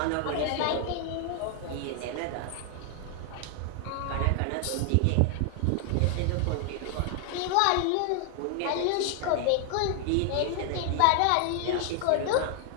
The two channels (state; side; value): different; both; correlation 0.00